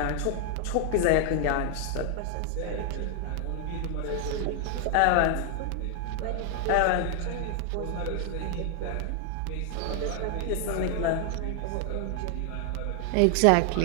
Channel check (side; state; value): both; different; correlation 0.00